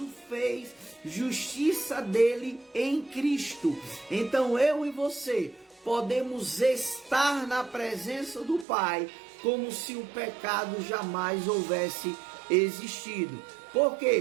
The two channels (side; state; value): left; drops out; at 8.7 s